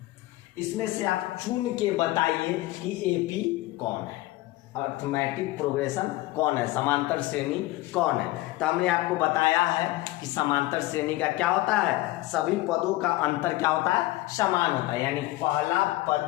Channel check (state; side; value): quieter; right; 18.2 dB